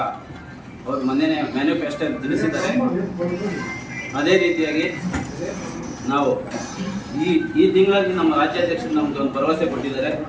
ಅವರು ಮೊನ್ನೆ ಮ್ಯಾನಿಫೆಸ್ಟೋ ತಿಳಿಸಿದ್ದಾರೆ. ಅದೇ ರೀತಿಯಾಗಿ ನಾವು ಈ ತಿಂಗಳಲ್ಲಿ ನಮ್ಮ ರಾಜ್ಯಾಧ್ಯಕ್ಷರು ನಮ್ಗೆ ಒಂದು ಭರವಸೆ ಕೊಟ್ಟಿದ್ದಾರೆ.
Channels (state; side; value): identical; both; correlation 1.00